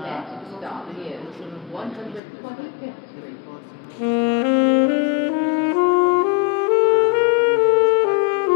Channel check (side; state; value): right; drops out; at 2.2 s